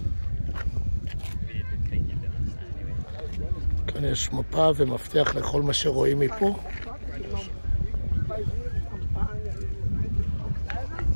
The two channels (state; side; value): inverted; both; correlation -1.00